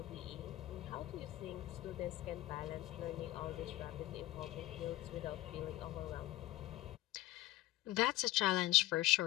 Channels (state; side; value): quieter; right; 16.7 dB